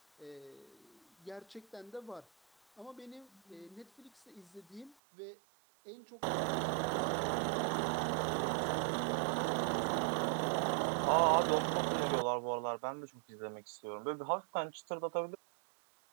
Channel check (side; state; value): left; drops out; at 5.0 s